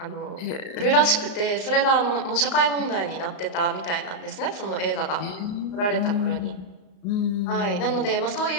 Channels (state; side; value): late; right; 34 ms